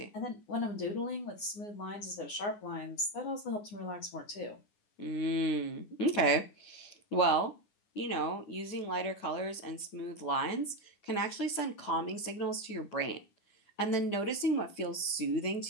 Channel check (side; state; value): right; late; 9.9 ms